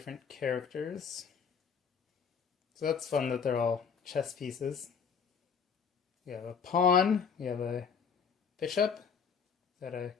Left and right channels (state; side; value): quieter; right; 6.5 dB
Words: characters. So that's fun that they're all chess pieces. We have a pawn, we have a bishop, is that a